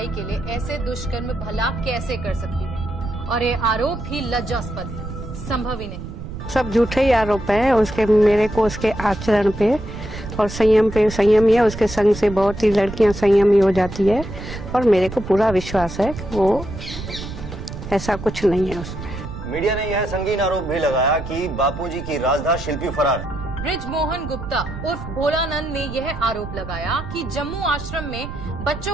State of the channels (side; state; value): right; noise; rumble, 10 dB below the sound